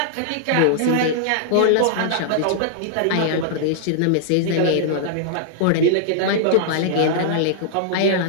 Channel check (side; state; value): both; different; correlation -0.01